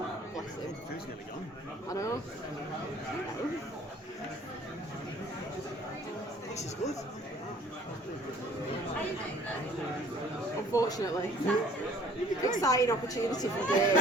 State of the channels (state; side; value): normal; both; correlation 0.54